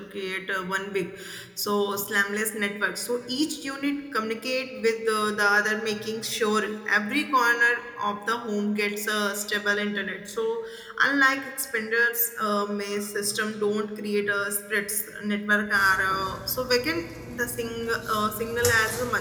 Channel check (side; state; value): both; identical; correlation 1.00